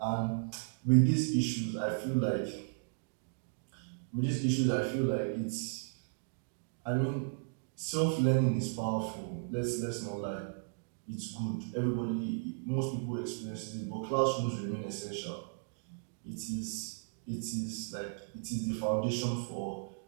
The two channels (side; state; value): left; silent; digital silence